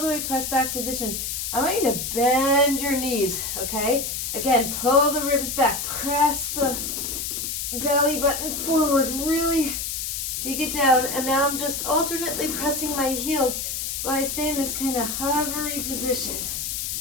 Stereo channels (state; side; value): noise; left; hiss, 3 dB below the sound